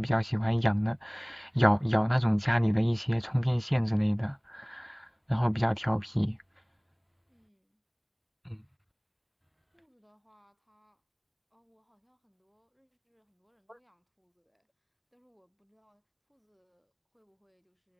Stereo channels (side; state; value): both; identical; correlation 1.00